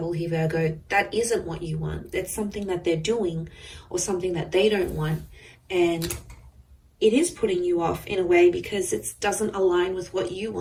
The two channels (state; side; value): identical; both; correlation 1.00